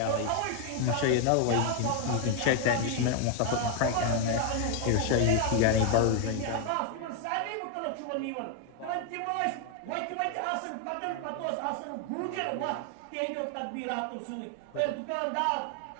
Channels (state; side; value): different; both; correlation 0.01